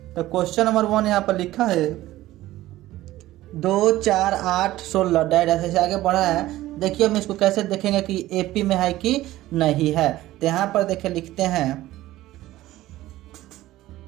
तो क्वेश्चन नंबर 1 यहाँ पर लिखा है 2, 4, 8, 16 डायरेक्ट ऐसे आगे बढ़ा है। देखिए हम इसको कैसे देखेंगे कि एपी में है कि नहीं है। तो यहाँ पर देखिए लिखते हैं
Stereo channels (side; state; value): left; quieter; 15.8 dB